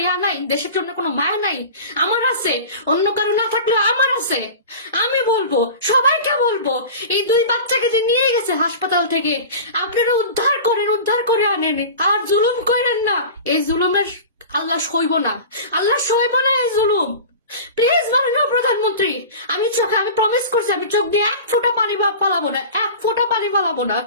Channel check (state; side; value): inverted; both; correlation -0.35